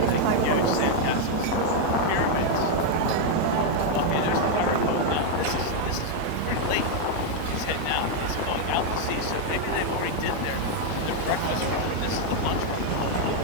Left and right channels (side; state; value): both; different; correlation 0.00